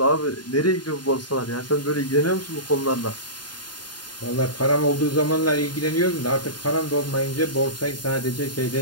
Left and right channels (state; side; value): late; right; 0.71 ms